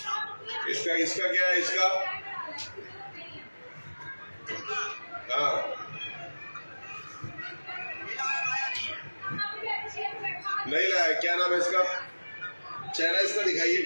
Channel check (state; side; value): inverted; both; correlation -1.00